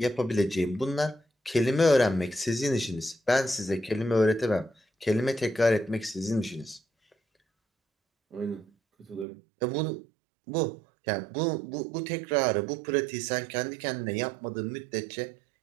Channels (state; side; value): drops out; left; at 9.2 s